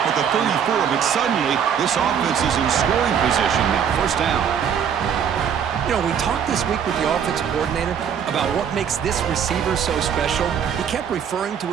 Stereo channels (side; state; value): left; quieter; 8.0 dB